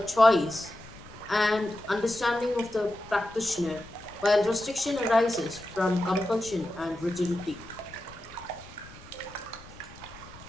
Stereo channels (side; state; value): left; noise; rumble, 20 dB below the sound